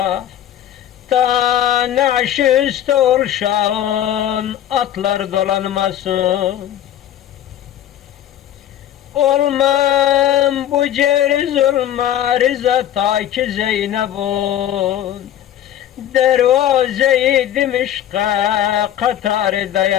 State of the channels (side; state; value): right; quieter; 11.3 dB